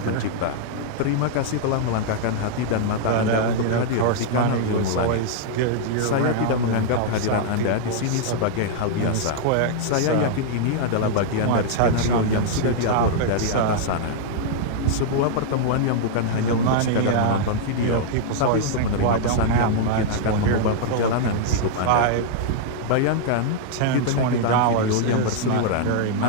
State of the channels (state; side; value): different; both; correlation -0.01